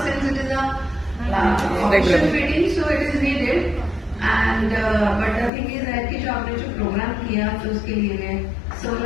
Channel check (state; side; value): drops out; right; at 5.5 s